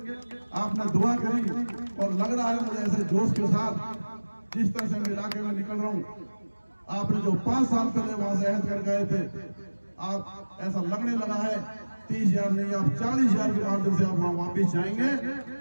आपने दुआ करी और लग रहा है मुझे ऐसे जोश के साथ जिस तरह से मैं इलाके में निकल रहा हूँ, आपने जो 5 साल पहले वहां से अहद कर गए थे, आप ऐसा लगने लगा है 30,000 नहीं, आप 40,000 के माध्यम से आप वहां वापिस जाएंगे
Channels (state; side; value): inverted; both; correlation -1.00